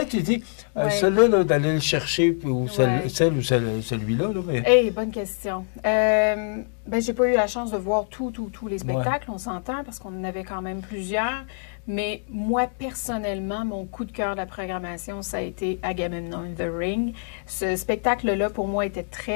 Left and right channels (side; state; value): right; silent; digital silence